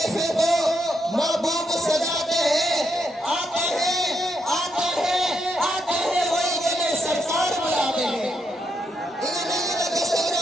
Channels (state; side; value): normal; both; correlation 0.80